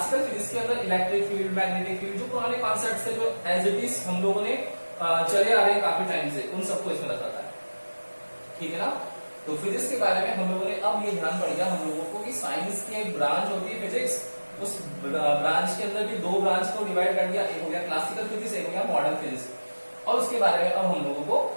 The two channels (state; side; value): inverted; both; correlation -1.00